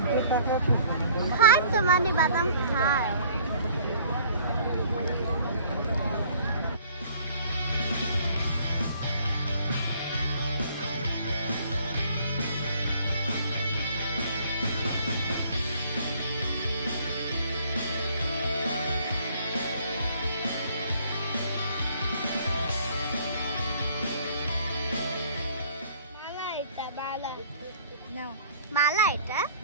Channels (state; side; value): inverted; both; correlation -0.56